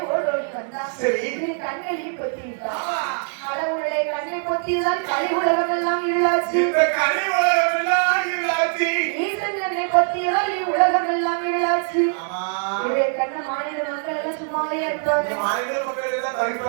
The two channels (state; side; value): silent; left; 58 dB below the other